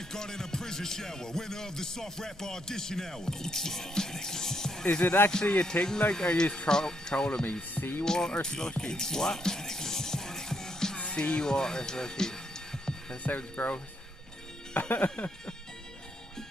in a prison shower. Winner of the soft rap audition hour. Is it actually a thing? Like, are you trolling me? Seawater slushy? What? Seawater slushy. That sounds gross.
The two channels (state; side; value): normal; both; correlation 0.76